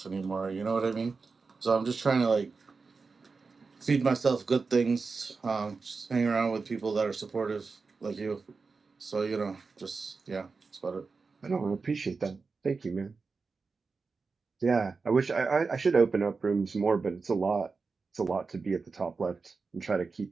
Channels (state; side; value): quieter; left; 4.5 dB